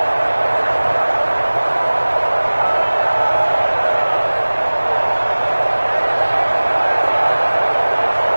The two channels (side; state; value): both; inverted; correlation -1.00